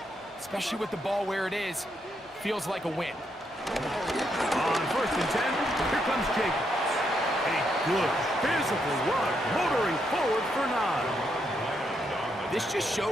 especially with the ball where it is, feels like a win. On 1st and 10, here comes Jacobs. A good physical run, motoring forward for 9. This just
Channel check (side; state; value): both; normal; correlation 0.78